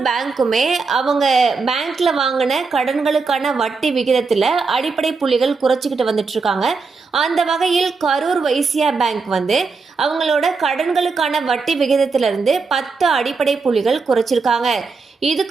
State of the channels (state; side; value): quieter; left; 4.5 dB